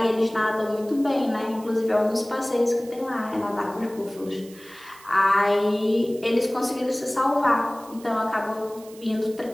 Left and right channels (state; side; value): noise; right; hiss, 22 dB below the sound